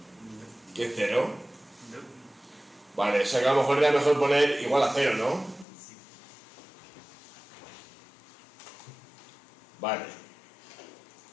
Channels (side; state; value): right; drops out; at 5.7 s